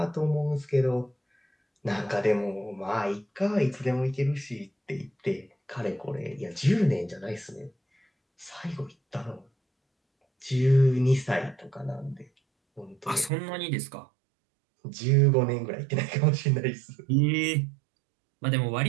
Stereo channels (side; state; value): left; drops out; at 13.3 s